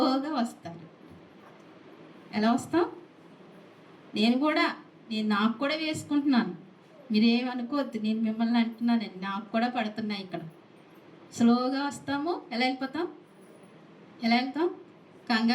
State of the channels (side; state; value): both; identical; correlation 1.00